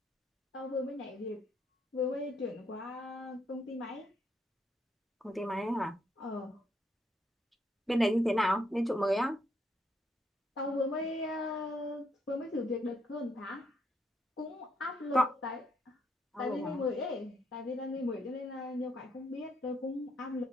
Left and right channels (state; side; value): normal; both; correlation 0.75